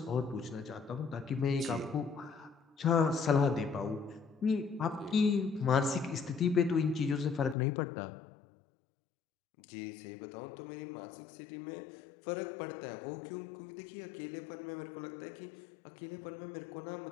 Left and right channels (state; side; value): drops out; right; at 7.6 s